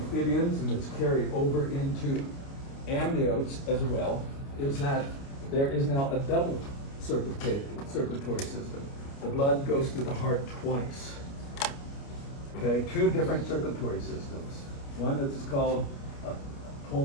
and it's carried over into amniotes as well, is that there is now a double circulatory system. The blood goes through the heart twice. Okay, two different circulatory systems. One that is called a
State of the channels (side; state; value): right; late; 29 ms